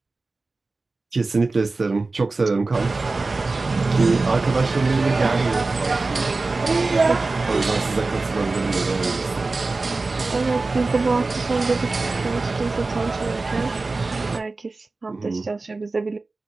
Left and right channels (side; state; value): left; quieter; 3.6 dB